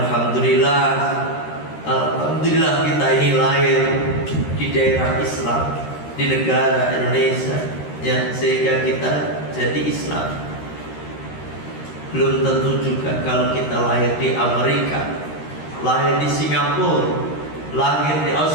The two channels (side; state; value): right; late; 13 ms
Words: alhamdulillah kita ini lahir di daerah Islam, di negara Indonesia, ya, sehingga kita jadi Islam. Belum tentu juga kalau kita lahir di Amerika, lahir di Singapura, lahir di